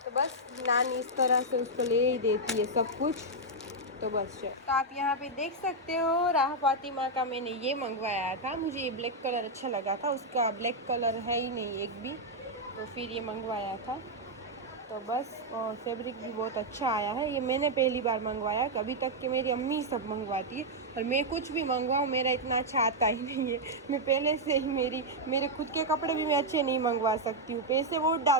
तो बस नानी इस तरह से उसको ले ही देती है सब कुछ। तो बस तो आप यहाँ पे देख सकते हो, राह फातिमा का मैंने ये मंगवाया था। मुझे ये ब्लैक कलर अच्छा लगा था, उसका ब्लैक कलर है ही नहीं एक भी, तो फिर ये मंगवाया था। तो बस, और फैब्रिक भी बहुत अच्छा आया है। ये मैंने पहली बार मंगवाया, कभी तक कि मेरी अम्मी सब मंगवाती है, और मैं कुछ भी मंगवाऊँ मेरा इतना अच्छा आता ही नहीं है। मैं पहले से ही मेरे खुद के कपड़े भी मैं अच्छे नहीं मंगवा सकती हूँ, पैसे बहुत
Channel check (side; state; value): both; normal; correlation -0.02